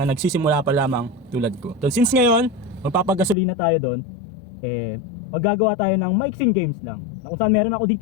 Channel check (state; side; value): drops out; right; at 3.4 s